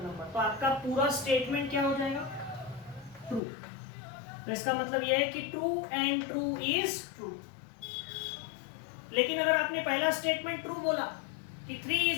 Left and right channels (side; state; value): right; drops out; at 3.4 s